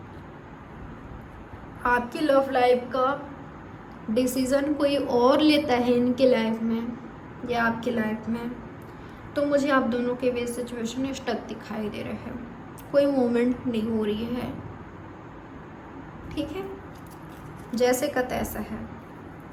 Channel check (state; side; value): identical; both; correlation 1.00